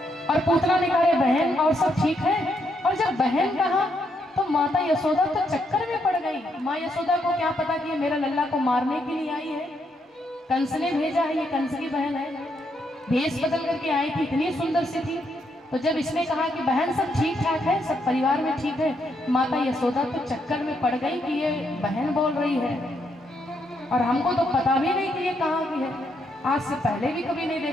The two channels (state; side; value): normal; both; correlation 0.77